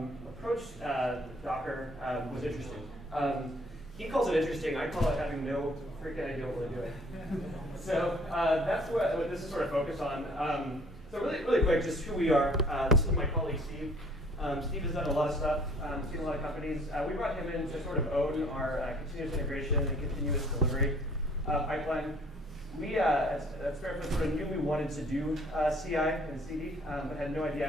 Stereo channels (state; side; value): normal; both; correlation 0.57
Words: approached Docker was interesting. He calls it interesting. I call it having no freaking idea what we're doing. So that's what this is sort of focused on. So really quick, just who we are. This is my colleague, Steve. Steve has done a lot of stuff, seen a lot of companies. We brought him in to sort of own our continuous integration and continuous delivery pipeline. We at SpareFoot sort of knew we wanted to do CI and CD, but had no